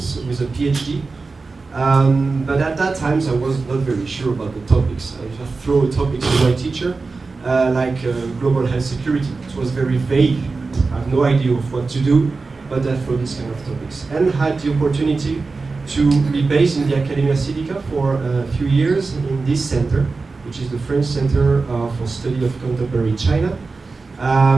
with a PhD. But at that time, I was not very sure about the topics. I just threw a topic to my teacher, like global health security. It was very vague. I have no idea of what to do, but I threw this kind of topics. And had the opportunity to be based in the Academia Sidica for a few years in this center, which is the French Center for Study of Contemporary China.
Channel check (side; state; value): left; quieter; 4.0 dB